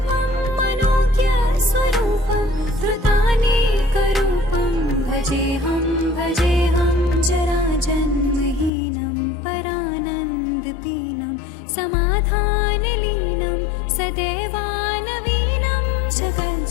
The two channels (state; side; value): drops out; right; at 8.7 s